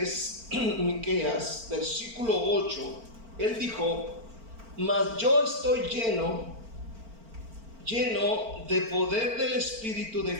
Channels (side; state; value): left; late; 4.4 ms